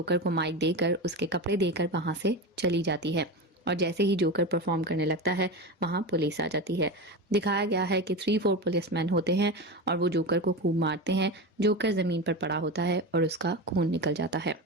को माइक देकर उसके कपड़े देकर वहां से चली जाती है। और जैसे ही जोकर परफॉर्म करने लगता है वहां पुलिस आ जाती है। दिखाया गया है कि 3-4 पुलिसमैन होते हैं और वो जोकर को खूब मारते हैं। जोकर जमीन पर पड़ा होता है और उसका खून निकल जाता है।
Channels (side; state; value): both; normal; correlation 0.22